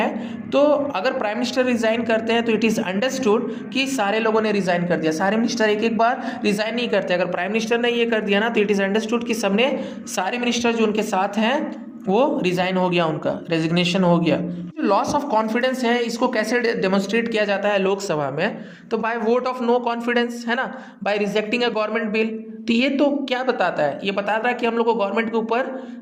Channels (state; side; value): identical; both; correlation 1.00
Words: तो अगर प्राइम मिनिस्टर रिजाइन करते हैं तो इट इज़ अंडरस्टूड कि सारे लोगों ने रिजाइन कर दिया। सारे मिनिस्टर एक एक बार रिजाइन नहीं करते। अगर प्राइम मिनिस्टर ने ये कर दिया ना तो इट इज़ अंडरस्टूड कि सबने, सारे मिनिस्टर जो उनके साथ हैं वो रिजाइन हो गया, उनका रेजिग्नेशन हो गया। जो लॉस ऑफ कॉन्फिडेंस है इसको कैसे डेमोन्स्ट्रेट किया जाता है लोकसभा में? तो by vote of no confidence, है ना, by rejecting a government bill. तो ये तो क्या बताता है? ये बताता है कि हम लोग को गवर्नमेंट के ऊपर